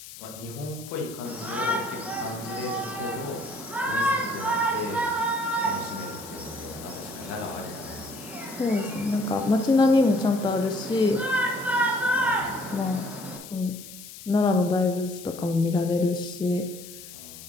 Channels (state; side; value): noise; left; hiss, 15 dB below the sound